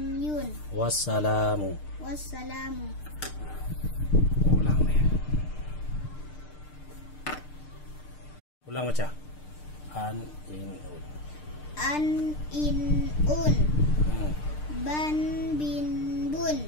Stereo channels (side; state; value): right; late; 6.6 ms